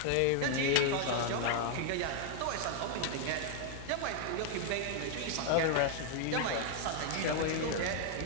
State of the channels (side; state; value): both; different; correlation 0.00